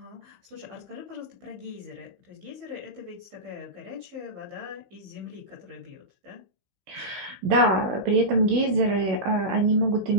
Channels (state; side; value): late; left; 16 ms